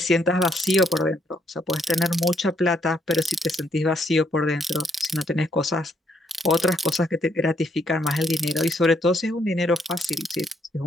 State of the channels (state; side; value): normal; both; correlation 0.72